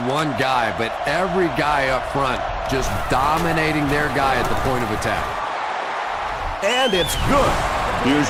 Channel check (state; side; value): identical; both; correlation 1.00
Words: one guy, but every guy up front just dominating their guy at the point of attack. And it's good. Here's